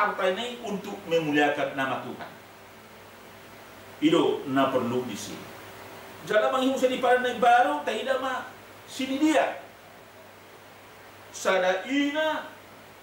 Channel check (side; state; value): both; identical; correlation 1.00